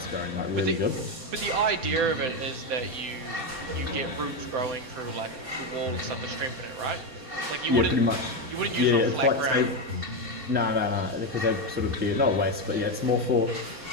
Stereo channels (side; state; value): left; late; 4.2 ms